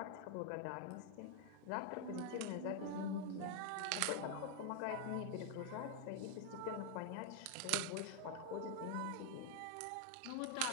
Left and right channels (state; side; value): different; both; correlation 0.00